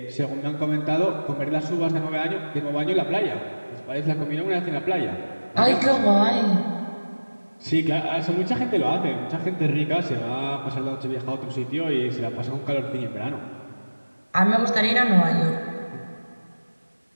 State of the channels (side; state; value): both; inverted; correlation -1.00